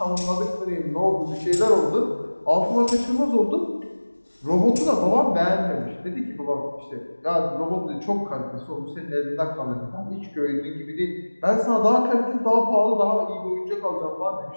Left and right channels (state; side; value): inverted; both; correlation -1.00